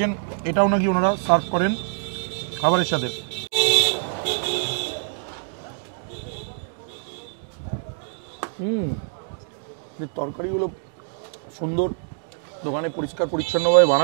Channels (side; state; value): left; silent; digital silence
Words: এটাও নাকি ওনারা সার্ভ করেন খাবারের সাথে। তরকারিগুলো সুন্দর, দোকানে পরিষ্কার পরিচ্ছন্নভাবে